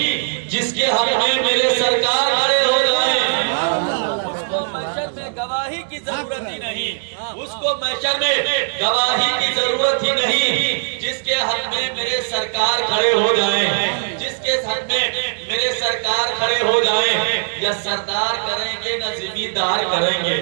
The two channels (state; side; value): silent; left; digital silence